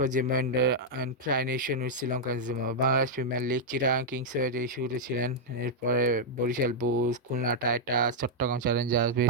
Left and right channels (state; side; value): normal; both; correlation -0.04